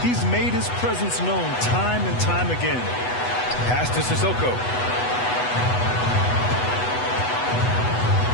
He's made his presence known time and time again. Pass to Sissoko.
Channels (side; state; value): right; late; 8.1 ms